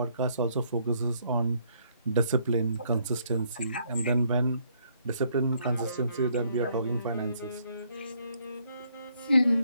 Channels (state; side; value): inverted; both; correlation -0.69